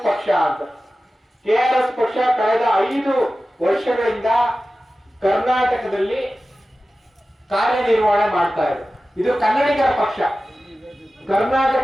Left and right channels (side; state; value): both; normal; correlation 0.95